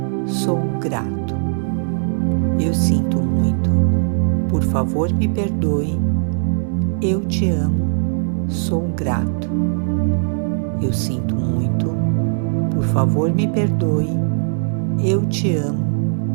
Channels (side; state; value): left; silent; digital silence